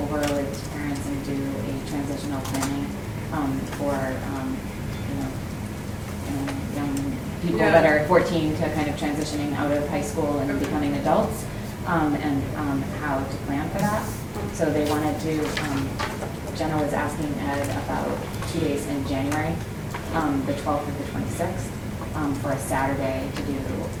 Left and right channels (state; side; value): identical; both; correlation 1.00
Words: over with parents and do a transitional planning for, young people that are 14 to kind of transitioning out of high school and becoming adults, and how to plan for that. So they wanted to, Jenna was asking Ed about 2 days in January, the 12th or the 26th, for a Saturday to do